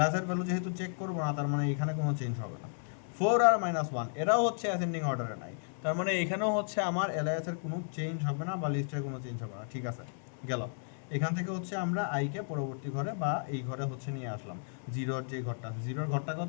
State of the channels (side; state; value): right; silent; 56 dB below the other